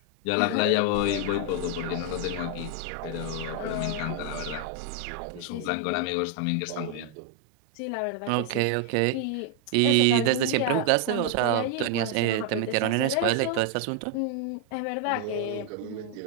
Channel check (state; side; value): different; both; correlation 0.00